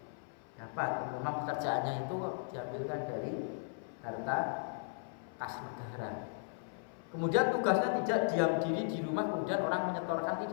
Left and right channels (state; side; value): silent; right; 53 dB below the other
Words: dapat. Memang pekerjaannya itu diambilkan dari harta kas negara. Kemudian tugasnya tidak diam diri di rumah, kemudian orang menyetorkan,